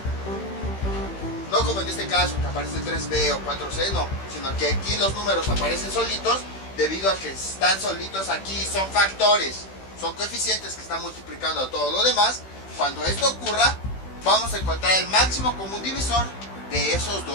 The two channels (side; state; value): right; late; 16 ms